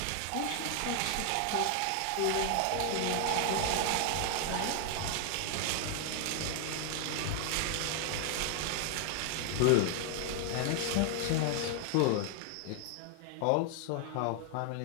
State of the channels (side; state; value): both; different; correlation 0.00